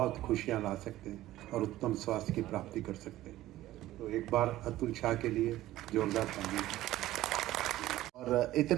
खुशियां ला सकते हैं और उत्तम स्वास्थ्य की प्राप्ति कर सकते हैं। तो एक बार अतुल शाह के लिए जोरदार तालियां। और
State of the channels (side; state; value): left; quieter; 15.3 dB